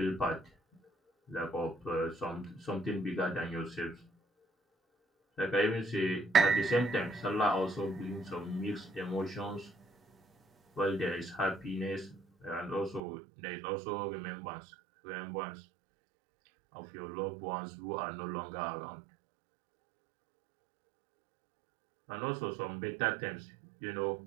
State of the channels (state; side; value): drops out; left; at 13.0 s